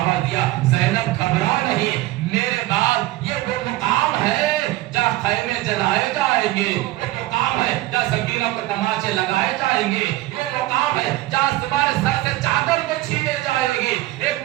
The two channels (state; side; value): quieter; left; 17.1 dB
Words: دیا زینب گھبرا نہیں، میرے بعد یہ وہ مقام ہے جہاں خیمے جلائے جائیں گے، وہ مقام ہے جہاں سکینوں کو تماچے لگائے جائیں گے، یہ مقام ہے جہاں تمہارے سر سے چادر کو چھینے جائے گی۔ ایک